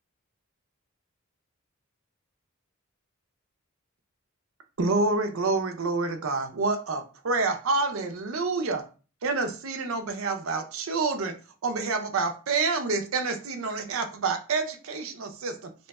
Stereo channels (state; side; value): quieter; left; 3.3 dB